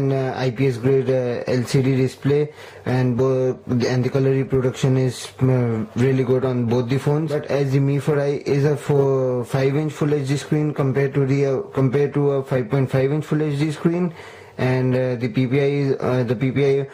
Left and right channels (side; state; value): both; identical; correlation 1.00